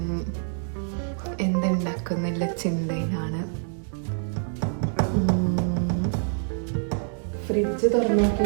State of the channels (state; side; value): silent; left; digital silence